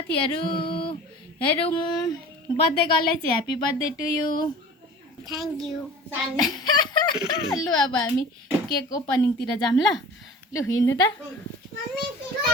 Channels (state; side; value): normal; both; correlation 0.41